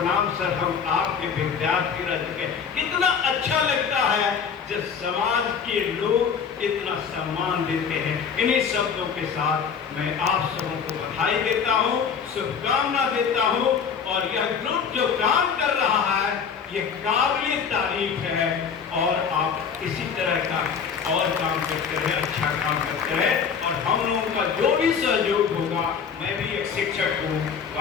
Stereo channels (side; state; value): right; quieter; 6.7 dB